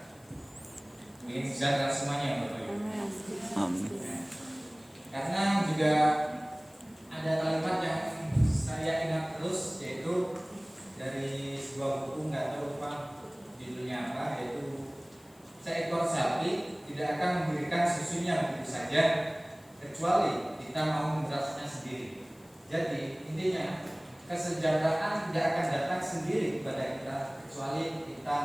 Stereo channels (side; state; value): left; noise; hiss, 28 dB below the sound